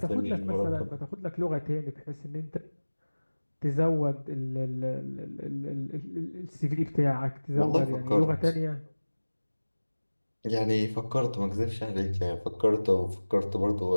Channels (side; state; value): both; inverted; correlation -1.00